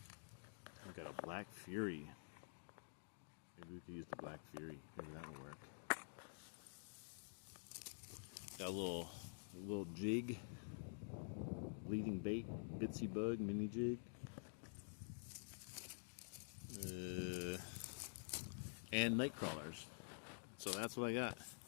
We got a Black Fury. Maybe we could use the Black Fury. Maybe that will work. Got a little jig. Bleeding bait. Bitsy bug mini jig. And night crawlers. So that's what I got.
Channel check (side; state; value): right; silent; digital silence